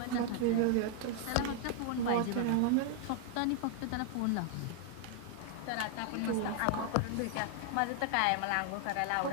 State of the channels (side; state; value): both; different; correlation 0.00